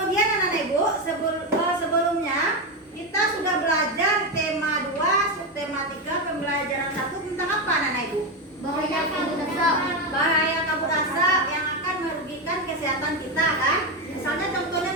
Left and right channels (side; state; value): both; normal; correlation 0.11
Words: anak-anak ibu sebelumnya kita sudah belajar tema 2, subtema 3, pembelajaran 1 tentang apa anak-anak ibu? Bahaya kabut asap. Bahaya kabut asap yang akan merugikan kesehatan kita kan? Misalnya